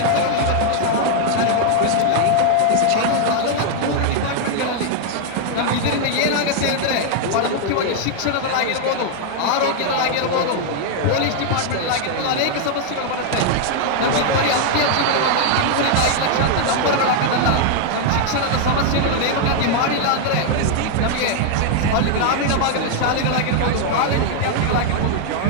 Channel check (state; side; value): different; both; correlation 0.00